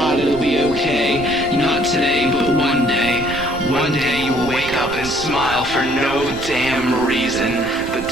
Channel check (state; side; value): noise; right; rumble, 15 dB below the sound